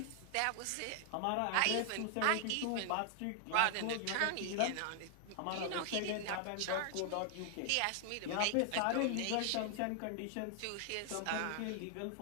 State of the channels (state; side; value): different; both; correlation 0.00